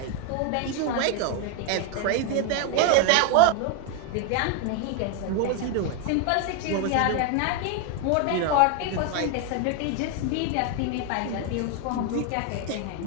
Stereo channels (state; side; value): different; both; correlation 0.01